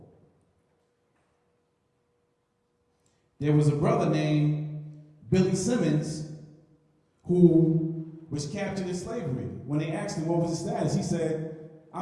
There was a brother named Billy Simmons who was captured in slavery. When they asked him what was his status, he said,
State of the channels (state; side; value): identical; both; correlation 1.00